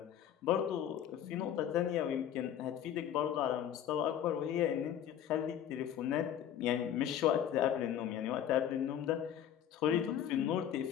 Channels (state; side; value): quieter; right; 10.0 dB